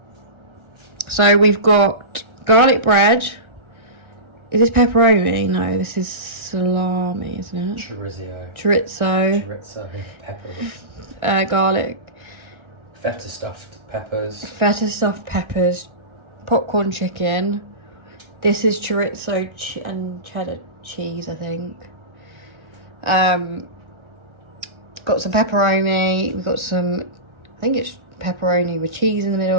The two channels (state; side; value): late; left; 1.3 ms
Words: So we've got garlic bread. Is this pepperoni? No, this is salami, isn't it? Chorizo. Chorizo. Pepper. Garlic. Feta stuffed peppers. Feta stuffed peppers. Popcorn chicken. This is chorizo and cheddar cheese, I think. Got some pepperoni. We've got some, I think it's pepperoni with cheese in the